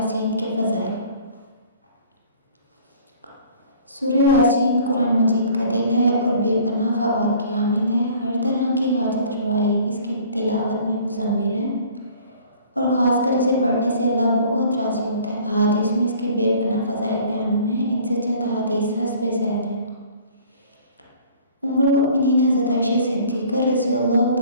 کے فضائل۔ سورہ یاسین قرآن مجید کا دل ہے اور بے پناہ فوائد کی حامل ہے۔ ہر طرح کی حاجت روائی اس کی تلاوت میں مضمر ہے اور خاص کر اسے پڑھنے سے اللہ بہت راضی ہوتا ہے۔ احادیث میں اس کے بے پناہ فضائل بیان ہوئے ہیں، ان سے چند احادیث حسب ذیل ہیں۔ ام المؤمنین حضرت عائشہ صدیقہ رضی اللہ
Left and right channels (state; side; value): inverted; both; correlation -0.51